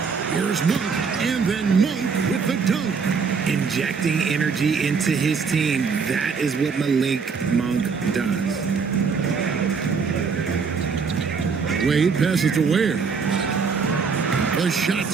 Here's Monk, and then Monk with the dunk. Injecting energy into his team. That is what Malik Monk does. Wade passes to Ware. The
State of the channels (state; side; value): quieter; left; 5.5 dB